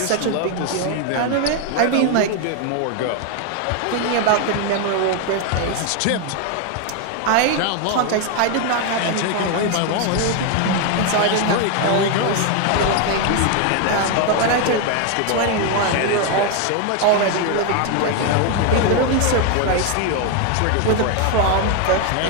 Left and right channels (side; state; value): both; different; correlation 0.01